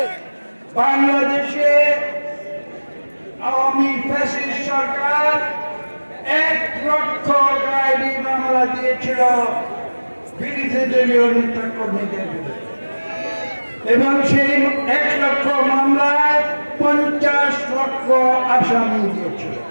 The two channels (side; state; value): both; inverted; correlation -1.00